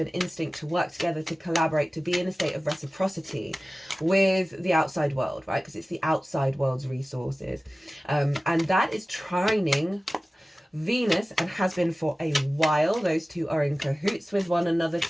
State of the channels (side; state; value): both; normal; correlation 0.97